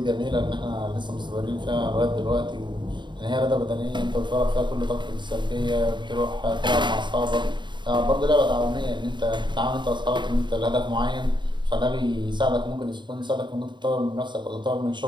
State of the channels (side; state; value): left; late; 0.22 ms